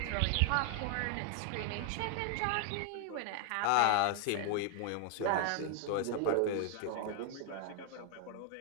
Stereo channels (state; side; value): different; both; correlation 0.00